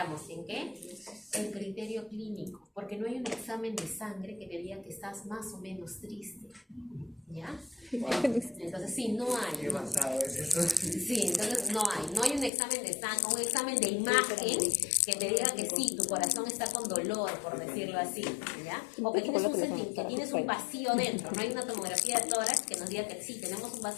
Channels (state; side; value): drops out; right; at 12.5 s